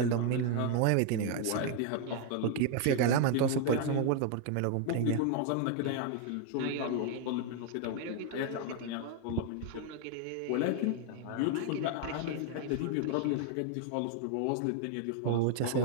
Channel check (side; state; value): both; different; correlation 0.00